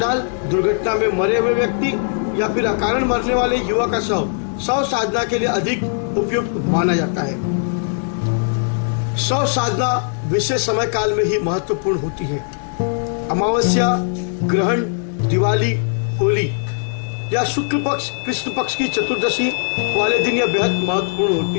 दुर्घटना में मरे हुए व्यक्ति या फिर अकारण मरने वाले युवा का शव शव साधना के लिए अधिक उपयुक्त माना जाता है। शव साधना विशेष समय काल में ही महत्वपूर्ण होती है। अमावस्या, ग्रहण, दिवाली, होली या शुक्ल पक्ष, कृष्ण पक्ष की चतुर्दशी वाले दिन यह बेहद महत्वपूर्ण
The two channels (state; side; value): silent; right; 66 dB below the other